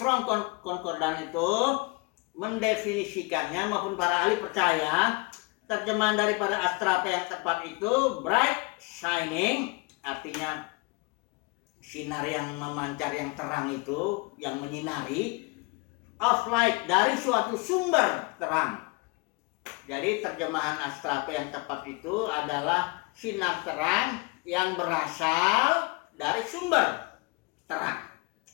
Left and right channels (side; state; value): right; quieter; 28.1 dB